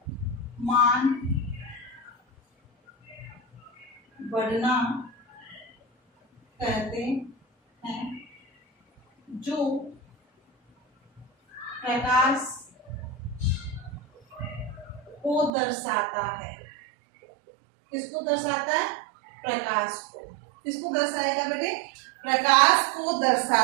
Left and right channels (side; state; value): left; drops out; at 15.5 s